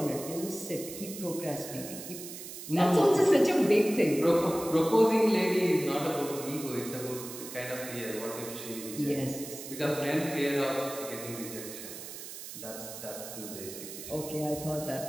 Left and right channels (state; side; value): noise; right; hiss, 11 dB below the sound